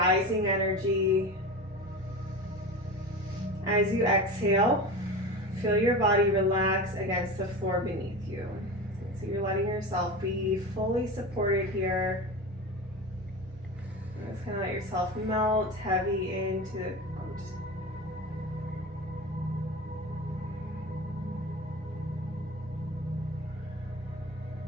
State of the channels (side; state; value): both; normal; correlation 0.28